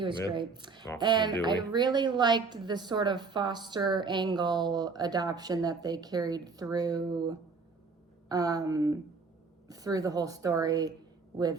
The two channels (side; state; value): left; quieter; 4.5 dB